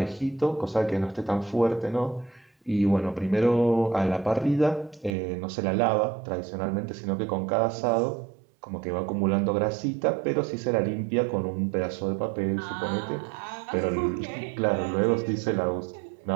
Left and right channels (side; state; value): left; drops out; at 5.1 s